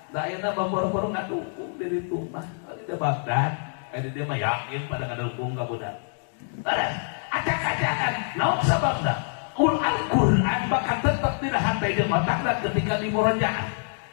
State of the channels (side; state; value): right; silent; digital silence